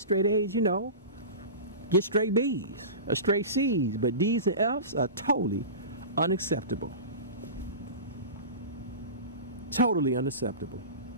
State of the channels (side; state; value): both; inverted; correlation -0.30